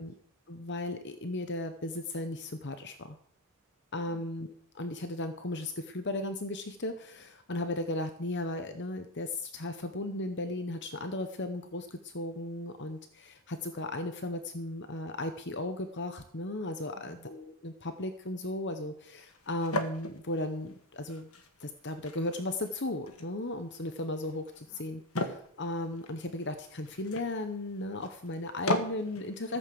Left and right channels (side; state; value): both; normal; correlation 0.11